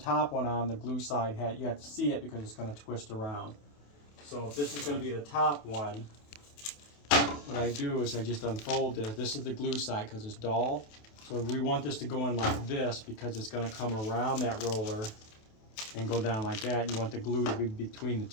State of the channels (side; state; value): right; late; 28 ms